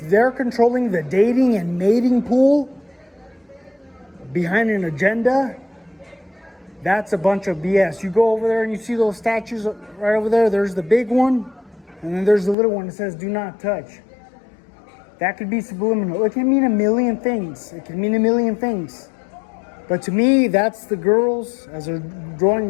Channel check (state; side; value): drops out; right; at 12.6 s